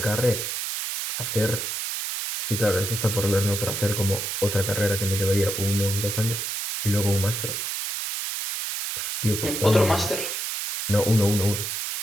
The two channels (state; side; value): noise; right; hiss, 3 dB below the sound